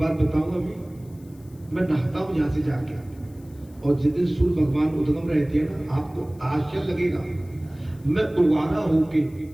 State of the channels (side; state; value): left; noise; hiss, 29 dB below the sound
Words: बताऊंगा, मैं नहाता हूं यहां से जाके, और जिस दिन सूर्य भगवान उद्गम रहते हैं ना, आपको आश्चर्य लगेगा, मैं उवारा होके